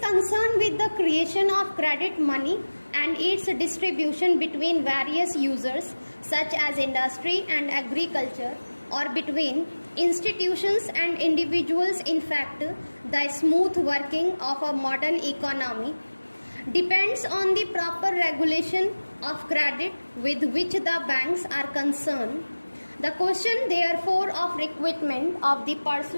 with the creation of credit money and its distribution between various users such as industry and agriculture, or between institutions and individuals. In fact, the smooth working of a modern economy depends on the proper regulation of credit with which the banks are concerned. The question, therefore, of recruitment of the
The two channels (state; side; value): inverted; both; correlation -1.00